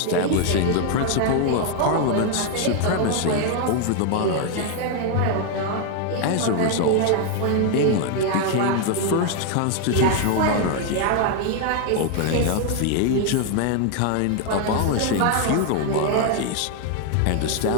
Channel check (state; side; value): different; both; correlation 0.00